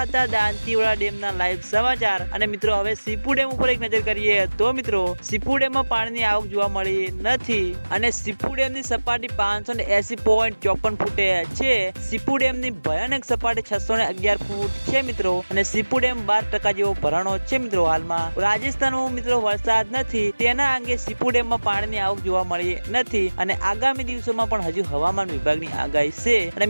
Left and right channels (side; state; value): both; inverted; correlation -1.00